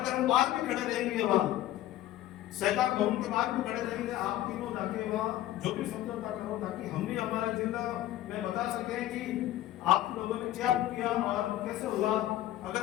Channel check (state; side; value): quieter; right; 14.1 dB